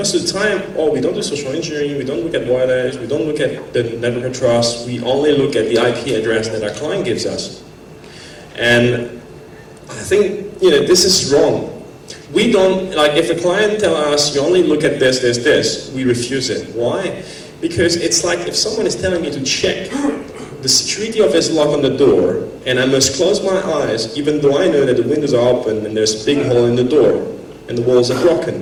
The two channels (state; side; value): identical; both; correlation 1.00